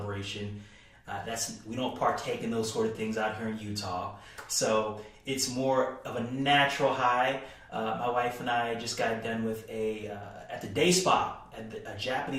We don't partake in those sort of things out here in Utah. So it's more of a natural high. My wife and I just got done with at the day spa, a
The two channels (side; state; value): both; identical; correlation 1.00